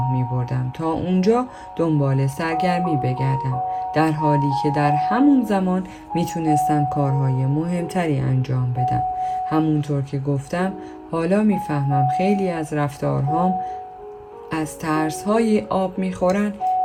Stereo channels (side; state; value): both; identical; correlation 1.00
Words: می بردم تا اونجا دنبال سرگرمی بگردم، در حالی که در همون زمان می تونستم کارهای مهمتری انجام بدم. همونطور که گفتم حالا می فهمم خیلی از رفتارهام از ترس‌های آب می خورن